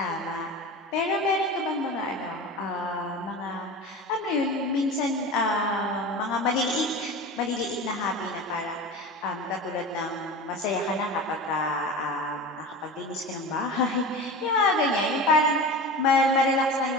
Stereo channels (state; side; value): normal; both; correlation 0.30